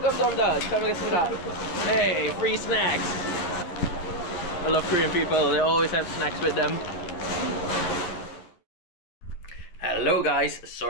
잘 먹겠습니다. Hey, free snacks. I love Korean people. They always have snacks with them. Hello guys,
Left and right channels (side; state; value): right; late; 11 ms